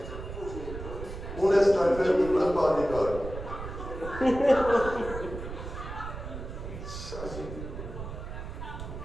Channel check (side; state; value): right; noise; rumble, 9 dB below the sound